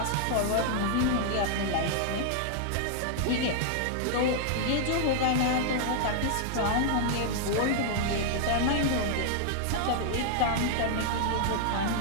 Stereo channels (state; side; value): different; both; correlation -0.01